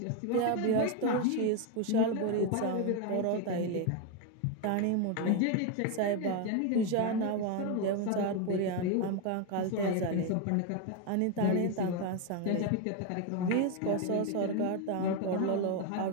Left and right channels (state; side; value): different; both; correlation 0.02